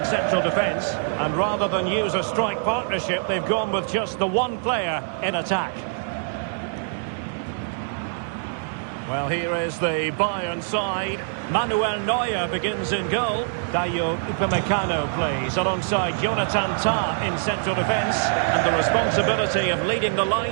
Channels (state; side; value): silent; left; 63 dB below the other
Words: central defence. And rather than use a strike partnership, they've gone with just the one player in attack. Well, here is the Bayern side. Manuel Neuer begins in goal. Dayo Upamecano plays alongside Jonathan Tah in central defence. And the responsibility of leading the